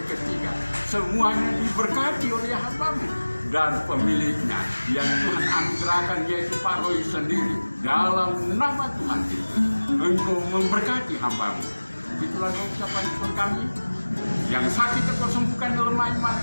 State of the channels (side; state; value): both; inverted; correlation -1.00